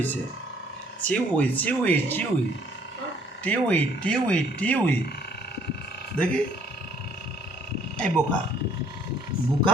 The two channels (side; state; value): both; normal; correlation 0.61